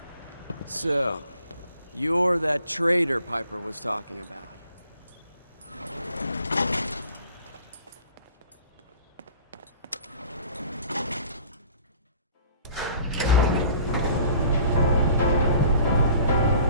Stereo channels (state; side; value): inverted; both; correlation -0.50